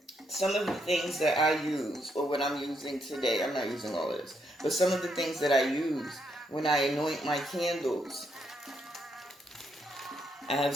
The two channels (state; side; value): normal; both; correlation 0.77